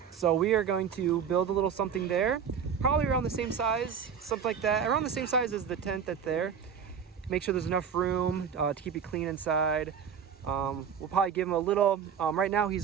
So we are going to build a little something there, probably around the same size, something like that, around the same size as the tent that's there. Make sure there's enough room to keep it clean inside. We'll probably give him a little, right now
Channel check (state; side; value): quieter; left; 7.2 dB